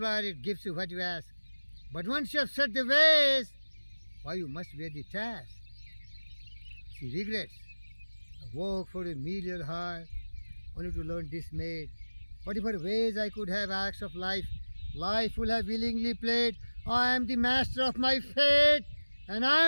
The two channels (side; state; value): both; inverted; correlation -1.00